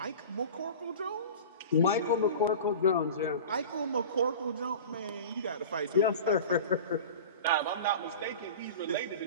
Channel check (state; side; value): inverted; both; correlation -0.35